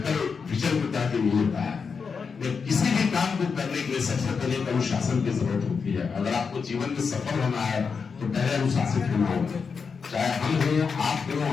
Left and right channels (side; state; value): right; quieter; 5.5 dB